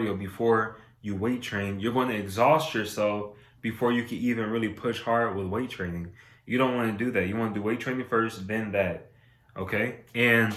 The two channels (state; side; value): identical; both; correlation 1.00